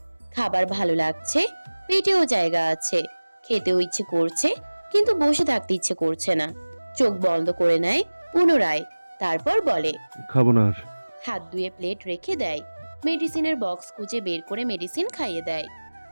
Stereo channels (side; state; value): both; inverted; correlation -1.00